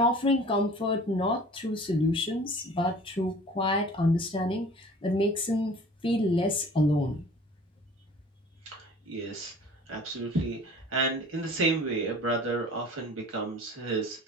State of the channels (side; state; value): both; normal; correlation 0.46